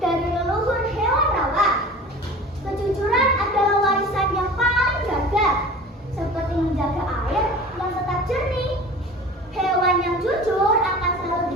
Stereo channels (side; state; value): both; normal; correlation 0.40